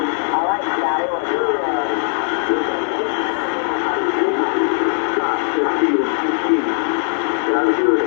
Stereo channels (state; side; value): silent; right; digital silence